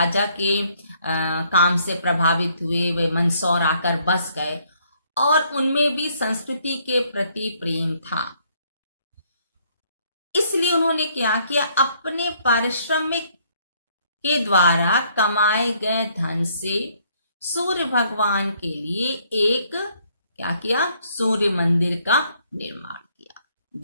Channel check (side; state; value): both; inverted; correlation -0.67